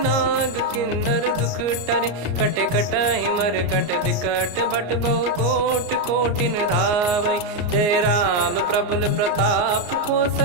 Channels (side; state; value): left; late; 34 ms